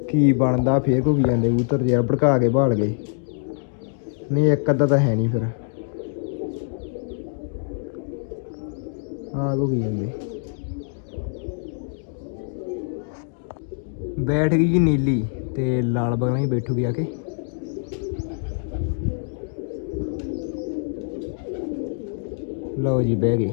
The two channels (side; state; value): right; silent; 62 dB below the other